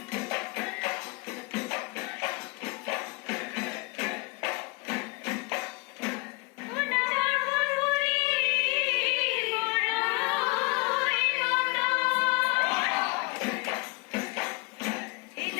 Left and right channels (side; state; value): right; quieter; 26.3 dB